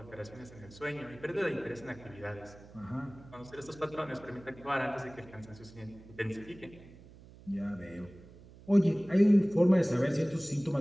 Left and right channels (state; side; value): noise; right; hum, 20 dB below the sound